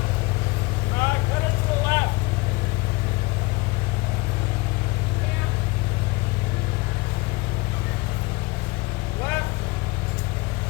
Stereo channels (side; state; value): right; quieter; 25.0 dB